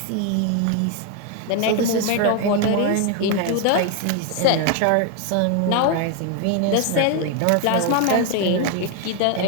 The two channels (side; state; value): both; different; correlation 0.01